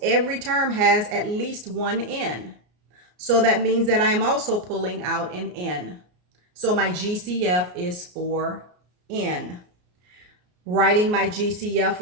Every term has at least one n. So that means that I am also pulling out an n. So my GCF is 4n. Writing my GCF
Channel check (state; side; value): late; left; 34 ms